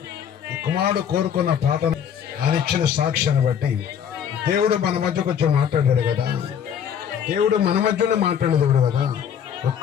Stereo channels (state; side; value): quieter; right; 8.5 dB